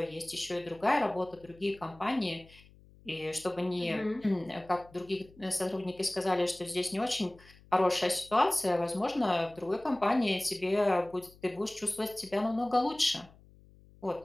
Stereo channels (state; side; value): noise; left; hum, 25 dB below the sound